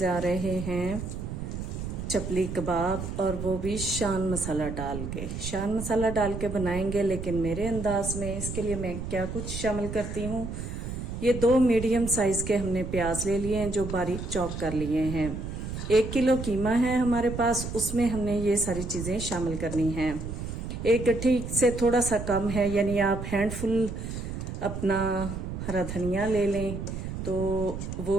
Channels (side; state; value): right; noise; rumble, 6 dB below the sound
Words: रहे हैं चपली कबाब, और वो भी शान मसाला डाल के। शान मसाला डाल के बनाएंगे लेकिन मेरे अंदाज में। इसके लिए मैं क्या कुछ शामिल करती हूँ। ये 2 मीडियम साइज के हमने प्याज ले लिए हैं जो बारीक चॉप कर लिए हैं। 1 किलो कीमा है हमारे पास, उसमें हमने ये सारी चीज़ें शामिल करनी हैं। एक गट्ठी से थोड़ा सा कम है, यानी आप हैंडफुल अपना हरा धनिया ले लें तो